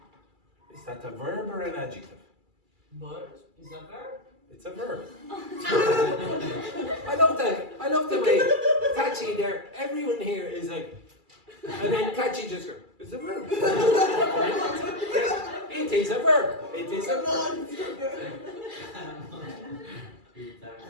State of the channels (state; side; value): late; left; 2.3 ms